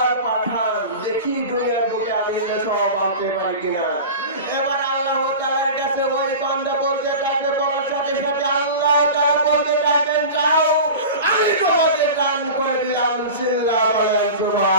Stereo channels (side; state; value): both; inverted; correlation -0.32